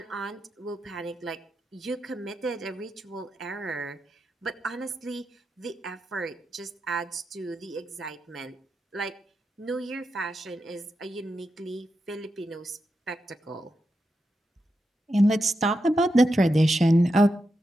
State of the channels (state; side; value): normal; both; correlation 0.87